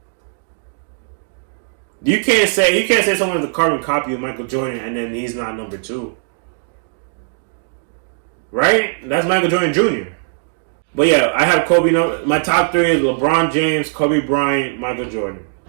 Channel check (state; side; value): silent; left; 67 dB below the other